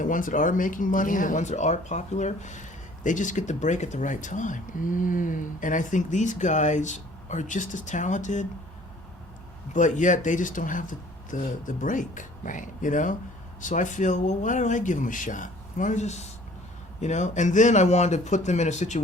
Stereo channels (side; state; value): both; normal; correlation 0.53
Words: ones that are making money, and the ones that are popular, they just get the break at the right time. And I think these guys are just as talented, but yet they just don't have the break. Right. So I feel, well, why don't I give them a shot? Why don't I just, And then I wanted to put them in a